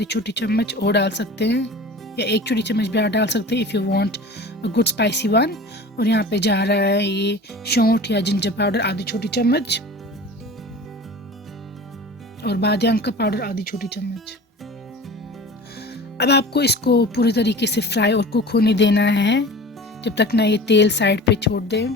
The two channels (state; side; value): normal; both; correlation 0.38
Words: छोटी चम्मच और डाल सकते हैं, या 1 छोटी चम्मच भी डाल सकते हैं if you want a good spicy one. और यहाँ पे जा रहा है ये सौंठ या जिंजर पाउडर आधी छोटी चम्मच, और बादियान का पाउडर आधी छोटी चम्मच। अब आपको इसको पूरी तरीके से फ्राई और कुक होने देना है जब तक ना ये तेल साइड पे छोड़ दे।